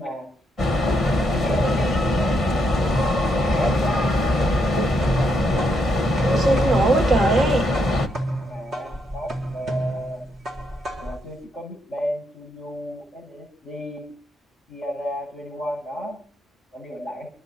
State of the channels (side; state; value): both; normal; correlation 0.78